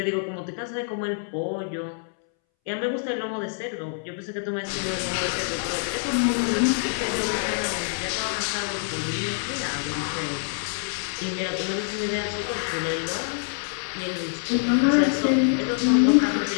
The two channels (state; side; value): silent; right; 61 dB below the other